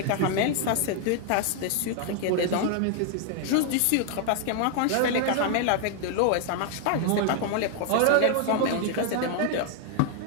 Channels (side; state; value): both; different; correlation 0.00